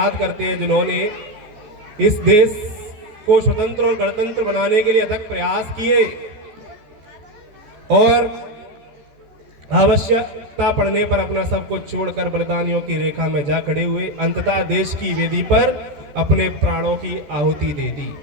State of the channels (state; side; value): late; left; 14 ms